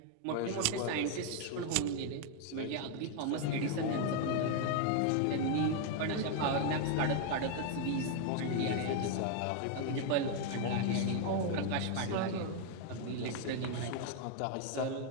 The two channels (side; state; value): both; different; correlation 0.00